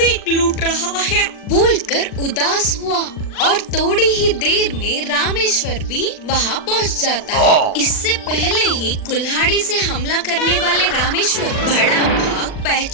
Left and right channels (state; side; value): late; right; 39 ms